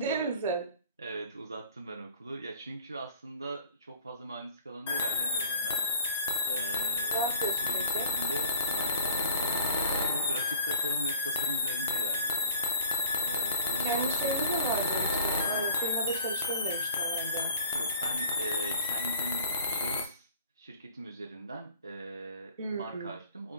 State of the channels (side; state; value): both; inverted; correlation -0.46